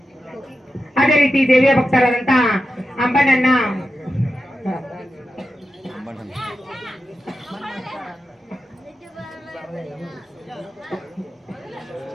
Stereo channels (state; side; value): normal; both; correlation 0.91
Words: ಅದೇ ರೀತಿ ದೇವಿಯ ಭಕ್ತರಾದಂತ ಅಂಬಣ್ಣನ